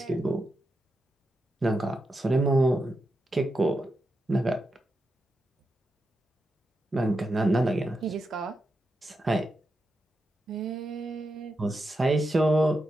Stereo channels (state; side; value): normal; both; correlation 0.87